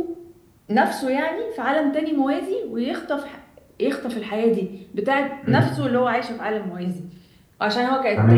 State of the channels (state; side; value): identical; both; correlation 1.00